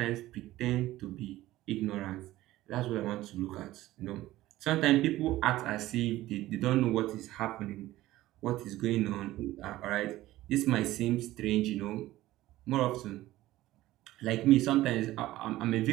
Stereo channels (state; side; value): quieter; left; 16.1 dB